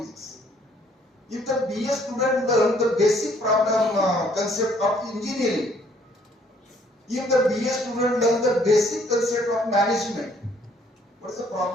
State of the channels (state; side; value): normal; both; correlation 0.63